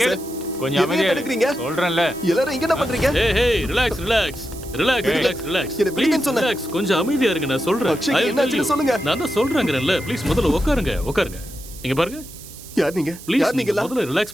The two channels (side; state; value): right; noise; hiss, 17 dB below the sound